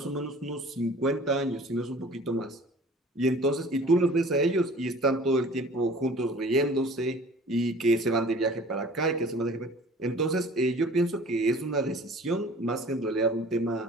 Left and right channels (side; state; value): both; normal; correlation 0.47